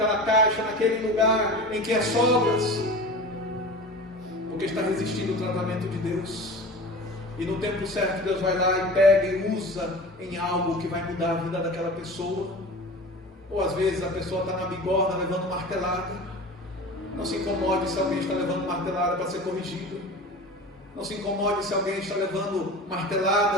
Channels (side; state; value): both; normal; correlation 0.35